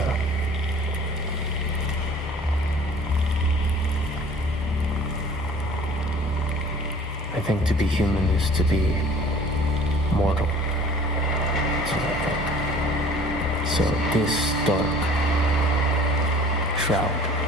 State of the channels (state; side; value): normal; both; correlation 0.49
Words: I think to be human is to be mortal. That's what I think. So this dark shroud